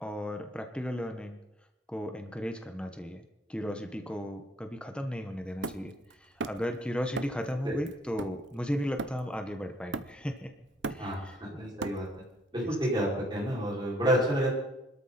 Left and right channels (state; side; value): normal; both; correlation 0.64